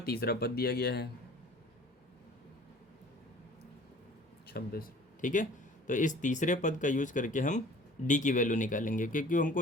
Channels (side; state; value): both; normal; correlation 0.48